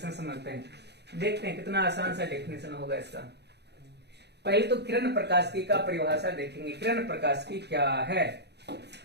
समझते हैं। देखते हैं कितना आसान सा डेफिनेशन होगा इसका। पहले तो किरण प्रकाश की का परिभाषा देखेंगे। किरण प्रकाश की क्या है?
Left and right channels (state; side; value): late; left; 0.49 ms